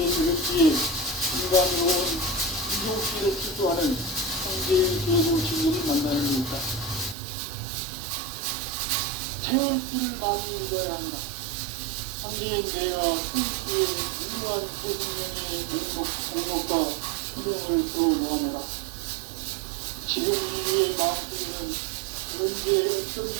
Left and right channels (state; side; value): drops out; left; at 7.2 s